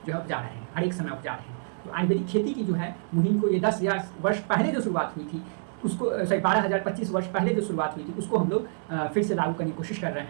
जो है उपजा रहे हैं, हर एक समय उपजा रहे हैं। तो आयुर्वेदिक खेती की जो है मुहिम को ये 10,000 वर्ष पहले जो शुरुआत हुई थी उसको 12,025 वर्ष पहले जो शुरुआत हुई थी उसको हम लोग फिर से लागू करने की कोशिश कर रहे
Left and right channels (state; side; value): silent; left; 60 dB below the other